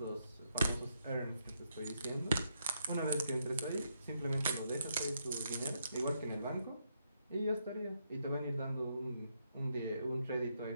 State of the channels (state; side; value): inverted; both; correlation -0.79